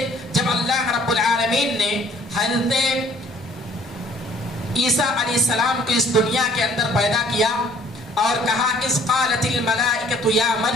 جب اللہ رب العالمین نے حضرت عیسیٰ علیہ السلام کو اس دنیا کے اندر پیدا کیا اور کہا اذ قالت الملائکۃ یا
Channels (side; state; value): both; normal; correlation 0.58